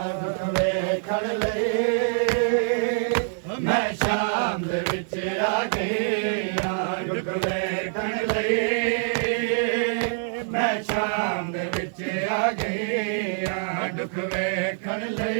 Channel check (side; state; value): left; silent; 62 dB below the other